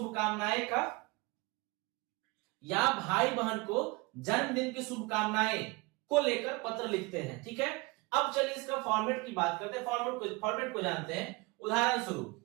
का, या भाई बहन को जन्मदिन की शुभकामनाएं को लेकर पत्र लिखते हैं। ठीक है, अब चलिए इसका फॉर्मेट की बात करते हैं, फॉर्मेट को जानते हैं। उदाहरण स्वरूप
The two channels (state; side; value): quieter; left; 24.9 dB